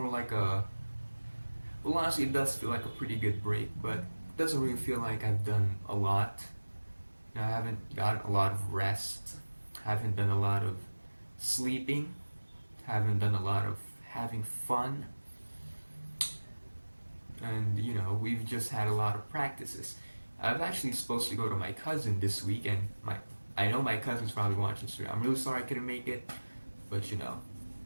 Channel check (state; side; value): inverted; both; correlation -1.00